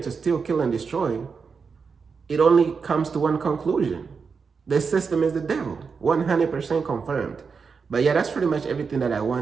steal, kill, and destroy, it only comes to one conclusion. The system is the devil. 100% confirmed. But yeah, that's pretty much everything that I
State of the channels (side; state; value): left; quieter; 5.4 dB